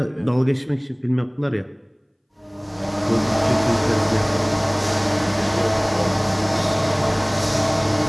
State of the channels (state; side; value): identical; both; correlation 1.00